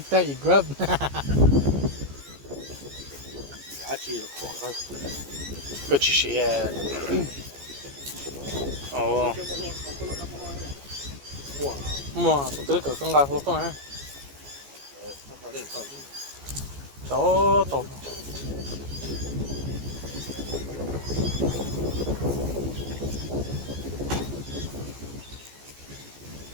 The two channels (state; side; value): late; left; 14 ms